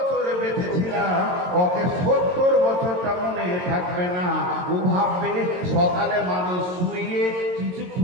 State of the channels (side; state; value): left; late; 22 ms